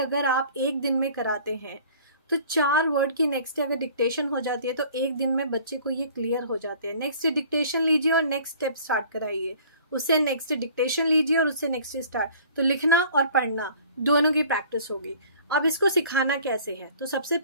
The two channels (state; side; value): inverted; both; correlation -0.50